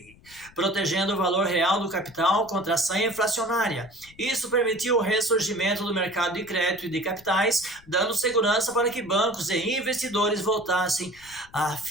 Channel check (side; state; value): left; noise; rumble, 25 dB below the sound